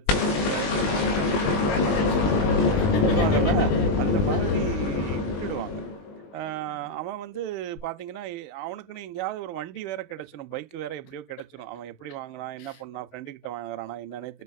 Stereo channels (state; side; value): late; right; 20 ms